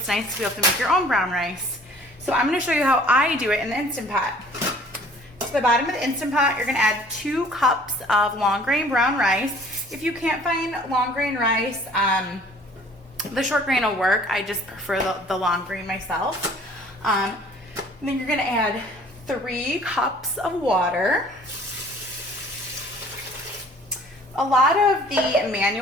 nice to be able to make your own brown rice. So I'm going to show you how I do it in the Instant Pot. To the bottom of the Instant Pot, you're going to add 2 cups of long grain brown rice. If you can't find long grain rice, the short grain will work. I just prefer the long grain myself. And then you're going to add 3 cups of water. A lot of the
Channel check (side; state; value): both; normal; correlation 0.53